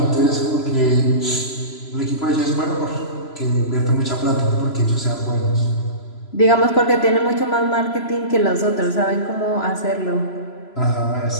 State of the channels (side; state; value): right; late; 3.0 ms